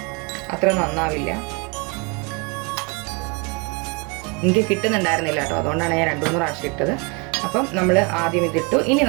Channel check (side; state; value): left; quieter; 31.5 dB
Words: അത്ര നന്നാവില്ല. എനിക്ക് കിട്ടുന്നുണ്ടായിരുന്നില്ല കേട്ടോ, അതുകൊണ്ടാണ് ഞാൻ 2-3 പ്രാവശ്യം ഇട്ടത്. അപ്പം നമ്മൾ ആദ്യം ഇതിട്ടു. ഇനി